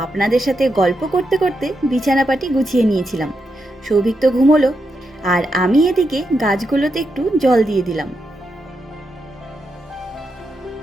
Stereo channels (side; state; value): both; normal; correlation 0.84